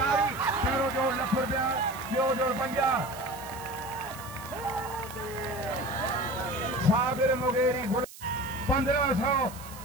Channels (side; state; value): right; noise; hiss, 17 dB below the sound